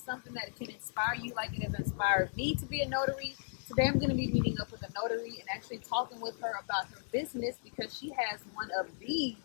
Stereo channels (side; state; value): right; silent; digital silence